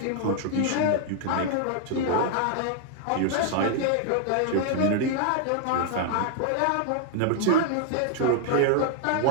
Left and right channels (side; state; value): both; different; correlation 0.00